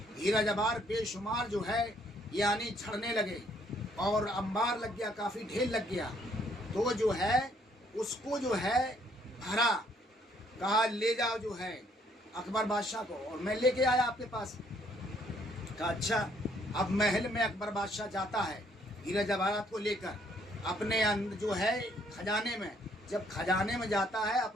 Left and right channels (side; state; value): both; normal; correlation 0.66